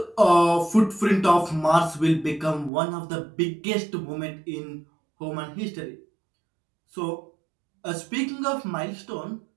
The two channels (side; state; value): left; drops out; at 2.7 s